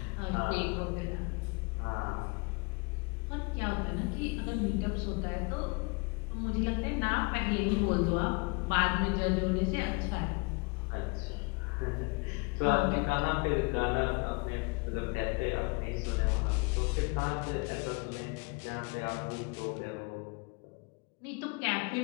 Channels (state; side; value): quieter; right; 30.1 dB